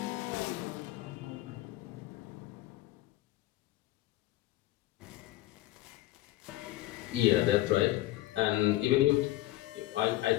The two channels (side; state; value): right; quieter; 16.2 dB